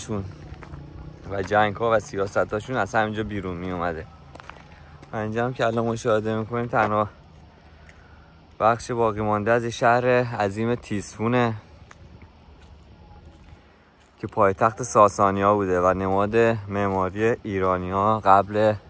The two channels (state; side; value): identical; both; correlation 1.00